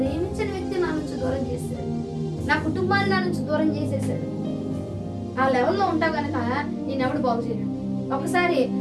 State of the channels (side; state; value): both; identical; correlation 1.00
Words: వ్యక్తి నా నుంచి దూరం చేశాడు, నా కుటుంబాన్ని నా నుంచి దూరం చేసేసాడు. ఆ లెవెల్లో ఉంటావు కనుక నేనెవడు బాగు చేయడు. ఒకసారి